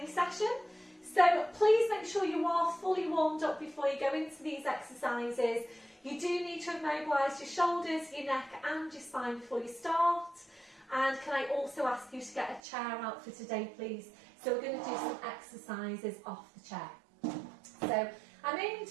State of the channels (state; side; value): drops out; left; at 12.6 s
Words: session. So please make sure you are fully warmed up before you go into these exercises. You do need to immobilise your shoulders, your neck and your spine before you start. And can I also ask you to get a chair out for today, please? So we're going to do some exercises off the chair. So I'm aiming